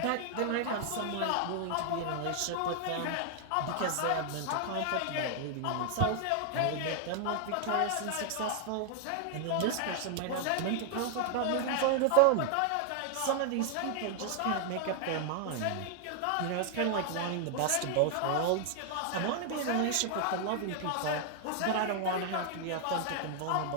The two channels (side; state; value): both; different; correlation 0.00